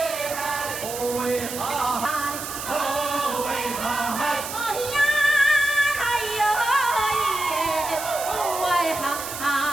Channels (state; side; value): noise; right; hiss, 8 dB below the sound